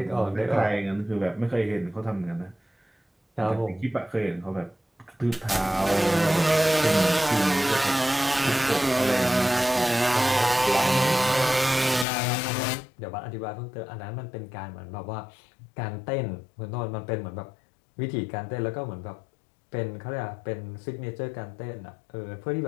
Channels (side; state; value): right; drops out; at 12.1 s